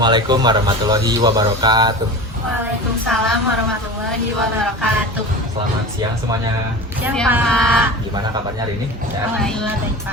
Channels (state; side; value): normal; both; correlation 0.32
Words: warahmatullahi wabarakatuh. Waalaikumsalam warahmatullahi wabarakatuh. Selamat siang semuanya. Siang Pak. Gimana kabarnya hari ini? Ya? Alhamdulillah baik